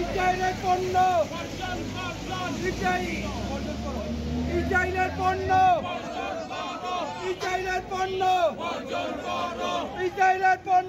ইসরায়েলের পণ্য ইসরায়েলের পণ্য ইসরায়েলের পণ্য ইসরায়েলের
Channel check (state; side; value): identical; both; correlation 1.00